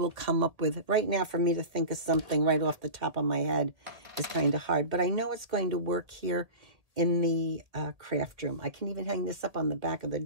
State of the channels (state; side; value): late; left; 1.8 ms